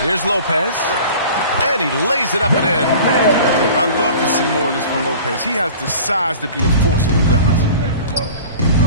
Here's Lopez. And he lays it up and in. I love to see more of this from Lopez. He has the size to be a force on the glass.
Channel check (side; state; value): both; inverted; correlation -0.42